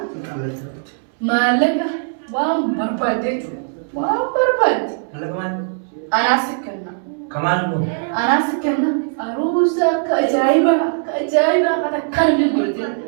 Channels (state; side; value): silent; left; 66 dB below the other